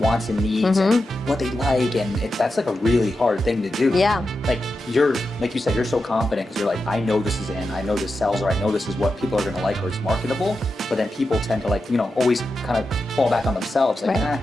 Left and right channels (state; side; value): normal; both; correlation 0.89